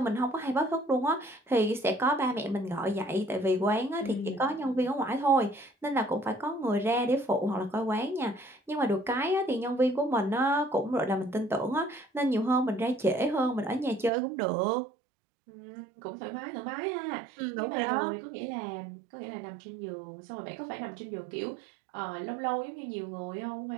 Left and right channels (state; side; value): drops out; left; at 14.1 s